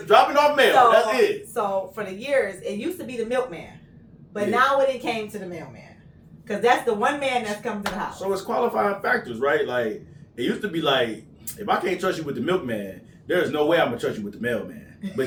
dropping off mail. That's it. So for the years, it used to be the milkman, but now it came to the mailman, because that's the one man that's come to the house. So it's qualifying factors, right? Like it used to be like, if I can't trust you with the milkman, there's no way I'm gonna trust you with the mailman. But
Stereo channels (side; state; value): both; identical; correlation 1.00